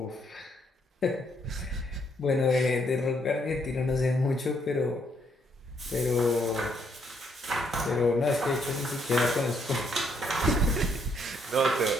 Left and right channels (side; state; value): both; normal; correlation 0.72